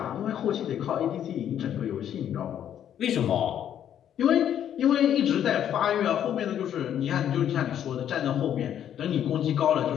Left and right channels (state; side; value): quieter; right; 10.0 dB